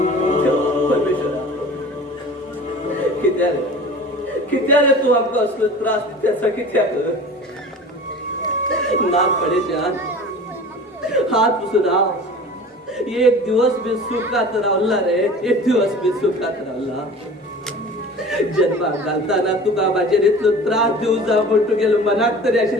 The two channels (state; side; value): normal; both; correlation 0.40